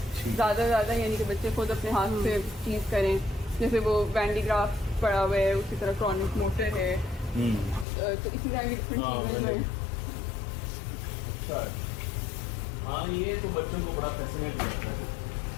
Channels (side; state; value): right; drops out; at 7.9 s